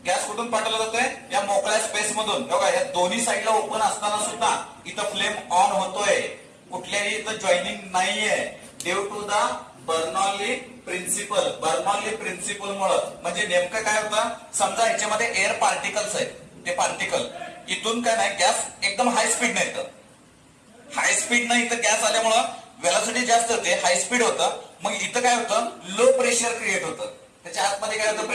गॅस कुठून पाठवला जातोय, या मोकळ्या स्पेस मधून. बघा या दोन्ही साईडला ओपन असताना सुद्धा इथं फ्लेम ऑन होतोय, कुठल्याही इथं जॉईनिंग नाहीये. Due to the Bernoulli principle. Bernoulli principle मुळे म्हणजे नेमकं काय होतं, समजा ह्याच्यामध्ये एअर पार्टिकल्स आहेत, ते पार्टिकल इथून काय नाही, गॅस एकदम हाय स्पीड नाही, हाय स्पीड नाही इथं गॅस आल्यामुळं व्हेलॉसिटी जास्त होते, हाय स्पीड होतं. मग इथं काय होतं, लो प्रेशर क्रिएट होतं. त्याच्या आतमध्ये काय होतं,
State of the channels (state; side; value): identical; both; correlation 1.00